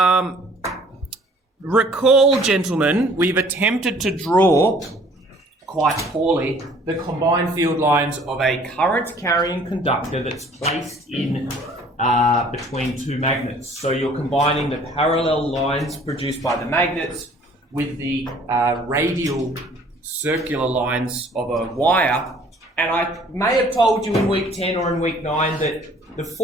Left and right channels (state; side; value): normal; both; correlation 0.55